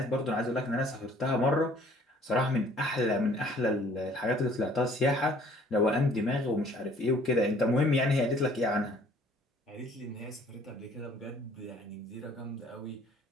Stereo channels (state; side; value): normal; both; correlation 0.56